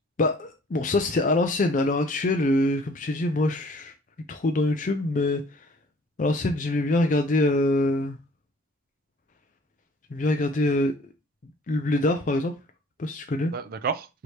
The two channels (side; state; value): both; normal; correlation 0.54